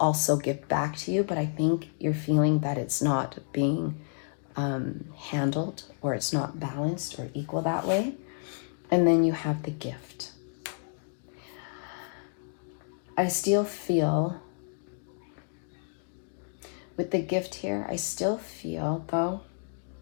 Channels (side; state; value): right; silent; digital silence